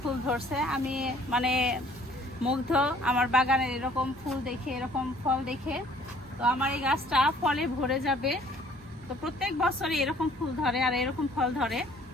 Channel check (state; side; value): normal; both; correlation 0.57